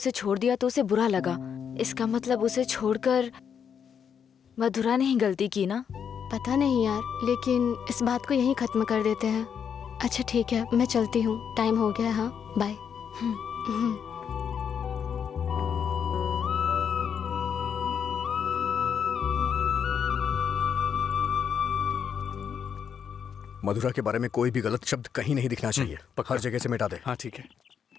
छोड़ दिया तो उसे बुरा लगा। इसका मतलब उसे छोड़कर मधुरा ने ही गलती की ना? पता नहीं यार, लेकिन इस बात को यहीं खत्म कर देते हैं। अच्छा ठीक है, मैं चलती हूँ, टाइम हो गया। हाँ बाय। मधुरा के बारे में कोई भी गलत शब्द कहीं नहीं दिखना चाहिए। पक्का। हर जगह से मिटा दे। हाँ ठीक है।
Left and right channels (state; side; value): quieter; right; 7.6 dB